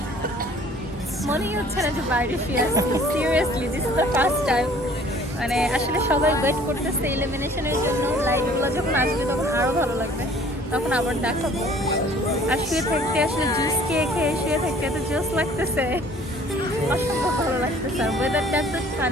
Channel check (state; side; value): normal; both; correlation 0.53